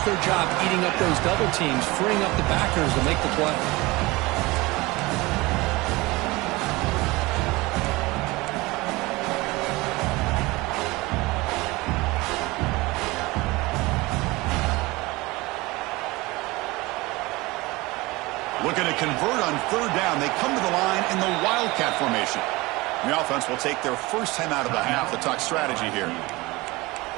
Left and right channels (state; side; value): quieter; left; 22.1 dB